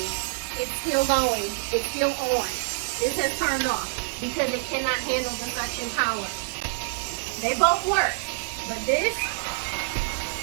It's still going. It's still on. This has turned off because it cannot handle the suction power. They both work, but this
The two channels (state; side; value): silent; left; 61 dB below the other